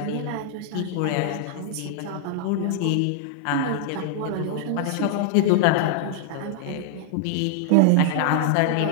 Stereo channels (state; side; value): different; both; correlation -0.01